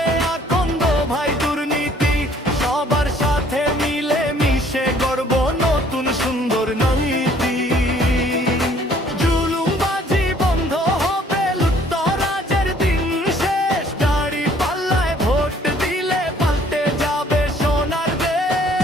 আকন্দ ভাই দুর্নীতি, সবার সাথে মিলে মিশে গড়ব নতুন সুন্দর নীতি। জুলুমবাজি বন্ধ হবে, লুটতরাজের দিন শেষ, দাড়ি পাল্লায় ভোট দিলে পাল্টে যাবে সোনার দেশ।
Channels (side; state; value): both; normal; correlation 0.59